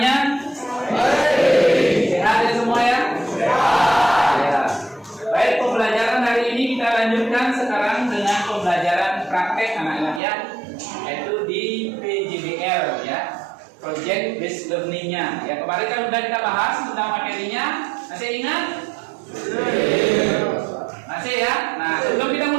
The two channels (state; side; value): drops out; left; at 10.2 s